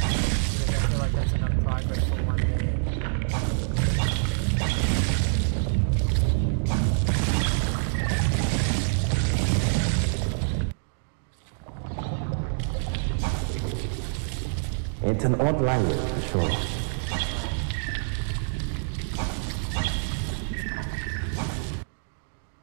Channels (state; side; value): silent; left; digital silence